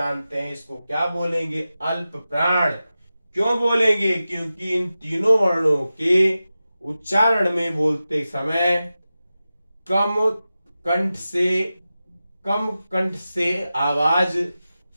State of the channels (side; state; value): both; inverted; correlation -0.94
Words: हैं, इसको क्या बोलेंगे? अल्प प्राण। क्यों बोलेंगे? क्योंकि इन तीनों वर्णों के उच्चारण में बोलते समय कम कंठ से आवाज